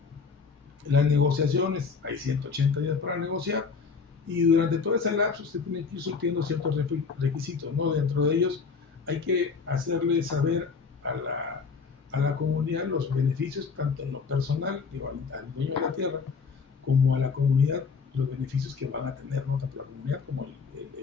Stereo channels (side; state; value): right; quieter; 5.2 dB